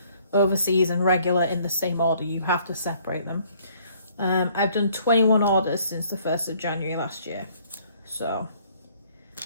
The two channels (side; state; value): both; inverted; correlation -0.61